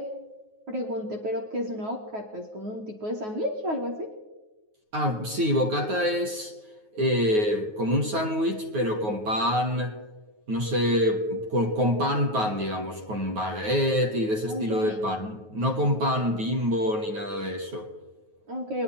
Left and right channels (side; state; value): left; late; 9.4 ms